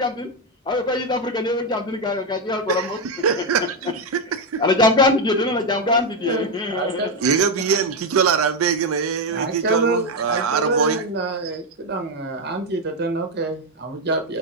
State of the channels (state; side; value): normal; both; correlation 0.06